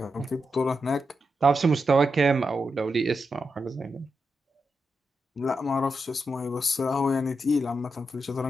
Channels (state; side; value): normal; both; correlation 0.86